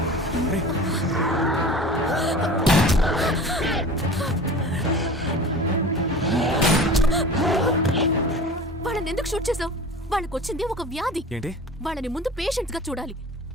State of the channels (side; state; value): both; normal; correlation 0.38